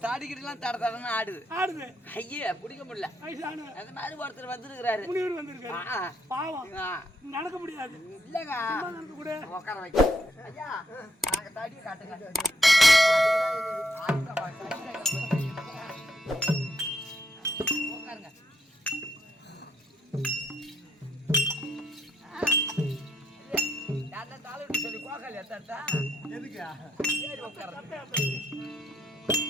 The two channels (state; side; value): normal; both; correlation 0.76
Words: தாடிக்கிட்டுலாம் தட தடன்னு ஆடுது ஐயா பிடிக்க முடியல. அந்த மாதிரி ஒருத்தர் வந்திருக்கிறாரு, பாவம் நடக்க முடியாது. இல்லங்க உட்கார வைக்க ஐயா, நாங்க தடியை காட்டுங்க. உட்காருங்க. சொல்லி கோகால் எத்தா எதுக்கு